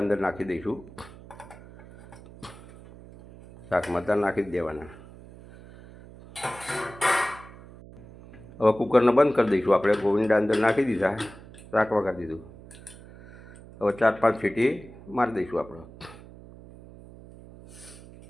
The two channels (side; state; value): right; noise; hum, 19 dB below the sound